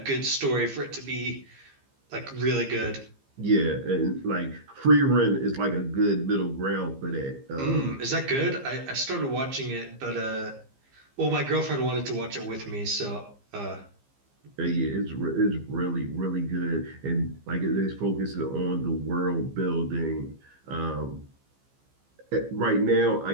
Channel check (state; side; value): late; left; 15 ms